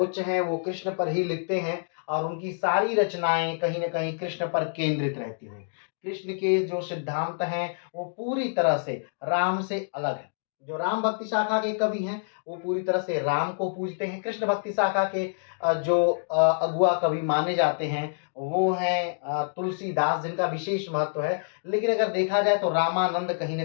हैं, वो कृष्ण पर ही लिखते हैं और उनकी सारी रचनाएं कहीं न कहीं कृष्ण पर केंद्रित रहती हैं। कृष्ण के जो सिद्धांत हैं वो पूरी तरह से राम से अलग है। जो राम भक्ति शाखा के कवि हैं वो पूरी तरह से राम को पूजते हैं। कृष्ण भक्ति शाखा के जो अगुआ कवि माने जाते हैं वो हैं तुलसीदास, जिनका विशेष महत्व है। लेकिन अगर देखा जाए तो रामानंद कहीं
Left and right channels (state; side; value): silent; right; digital silence